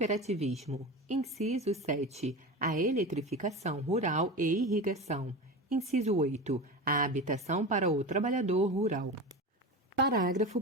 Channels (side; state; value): both; normal; correlation 0.27